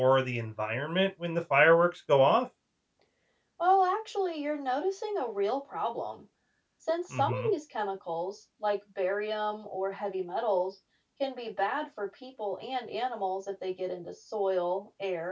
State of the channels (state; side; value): identical; both; correlation 1.00